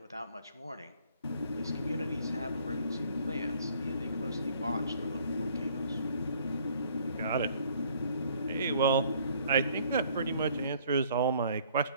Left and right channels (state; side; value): inverted; both; correlation -0.59